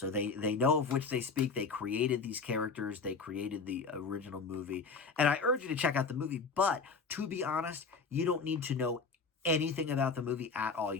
they know of which they speak. They created these characters. They created the original movie. And I urge you to check out the movie. But to be honest, you don't need to know anything about the movie at all.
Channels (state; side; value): quieter; right; 4.8 dB